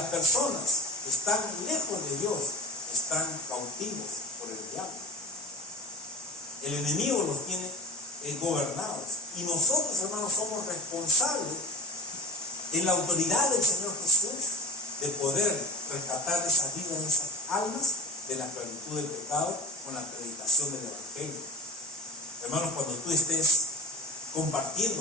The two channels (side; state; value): both; normal; correlation 0.35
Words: personas que están lejos de Dios están cautivos por el diablo. El enemigo los tiene gobernados. Y nosotros, hermanos, somos responsables en la autoridad del Señor Jesús de poder rescatar esa vida, de esas almas de la esclavitud del pecado con la predicación del Evangelio. Hermanos, cuando tú estés